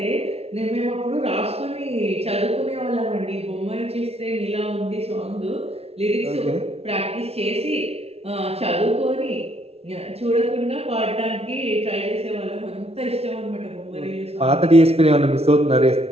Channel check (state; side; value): late; left; 0.30 ms